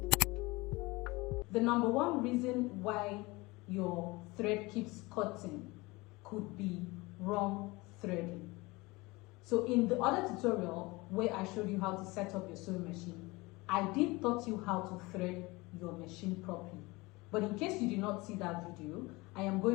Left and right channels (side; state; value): right; quieter; 23.1 dB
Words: The number one reason why your thread keeps cutting could be wrong threading. So in the other tutorial where I showed you how to set up your sewing machine, I did taught you how to thread your machine properly. But in case you did not see that video, I am